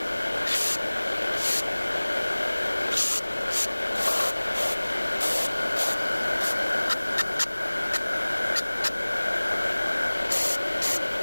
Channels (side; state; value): both; inverted; correlation -1.00